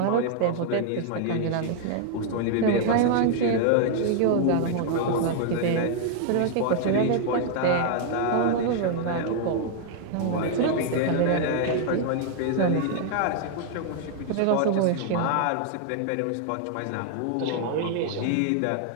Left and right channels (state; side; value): different; both; correlation 0.00